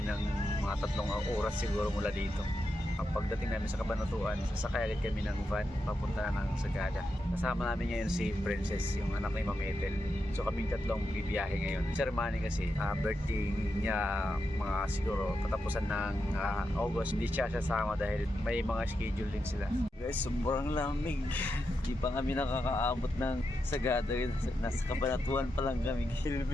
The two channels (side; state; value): both; normal; correlation 0.86